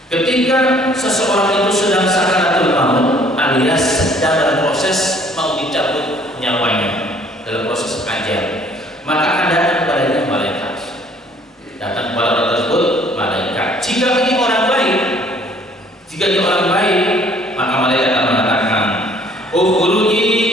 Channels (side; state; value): both; normal; correlation 0.58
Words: Ketika seseorang itu sedang sakaratul maut alias sedang dalam proses mau dicabut nyawanya, dalam proses ajal, maka akan datang kepadanya malaikat. Datang kepada orang tersebut malaikat. Jika ini orang baik, maka malaikat akan mengatakan,